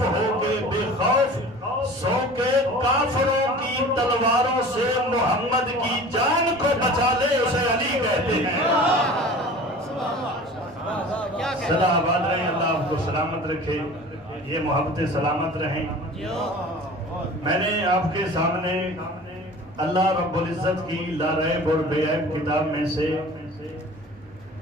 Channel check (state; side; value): normal; both; correlation 0.41